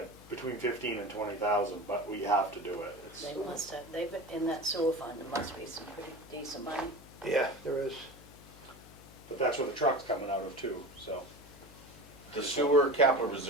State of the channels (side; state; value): left; noise; hum, 20 dB below the sound